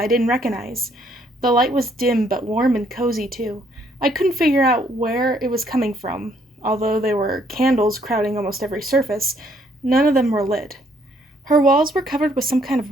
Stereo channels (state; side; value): normal; both; correlation 0.67